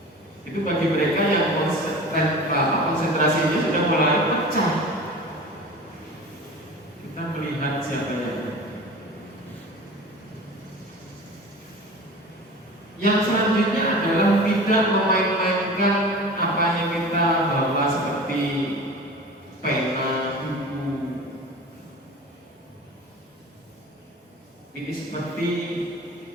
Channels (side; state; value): both; normal; correlation 0.37